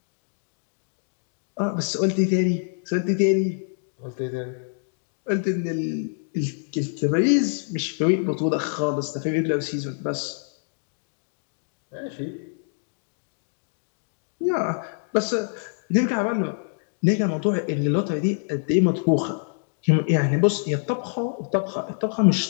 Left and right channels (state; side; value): silent; right; digital silence